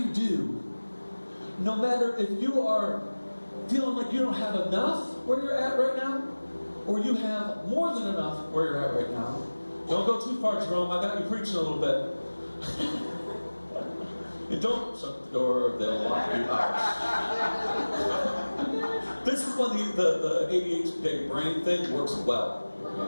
do, no matter if you are feeling like you don't have enough where you're at right now, or you have more than enough where you're at right now, don't go too far, Jerome. I got you preaching a little bit. And don't shut the door, they'll lock you out. This is when the ADHD brain thing works well.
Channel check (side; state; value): both; inverted; correlation -1.00